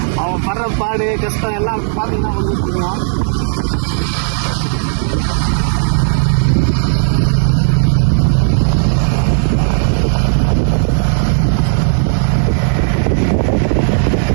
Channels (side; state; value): left; silent; 62 dB below the other